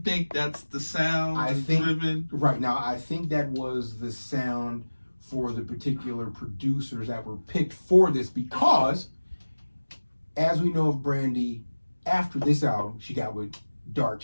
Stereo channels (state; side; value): inverted; both; correlation -1.00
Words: that's the sound? I think driven? Right now, I think that was the sound for the particular producers that were picked for this, because, as we know of Brandy, after this album, she got with Dark